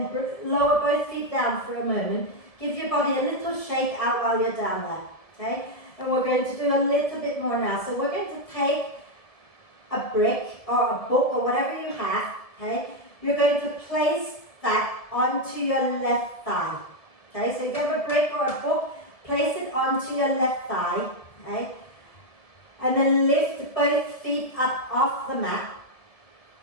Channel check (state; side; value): late; right; 1.7 ms